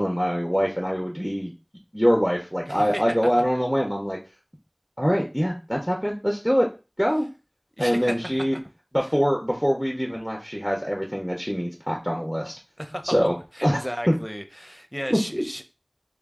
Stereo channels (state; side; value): identical; both; correlation 1.00